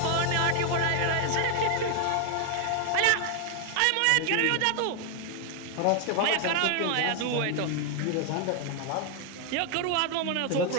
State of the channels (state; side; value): different; both; correlation 0.00